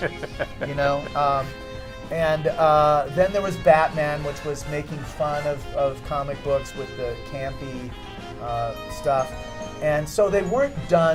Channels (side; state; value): both; identical; correlation 1.00